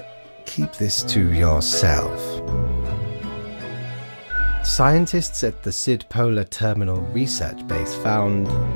keep this to yourself. Scientists at the Sid Polar Terminal Research Base found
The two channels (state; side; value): inverted; both; correlation -1.00